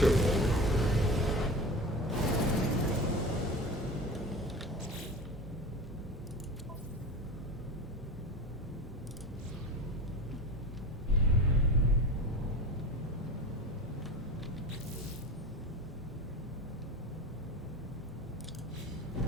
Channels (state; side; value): normal; both; correlation 0.31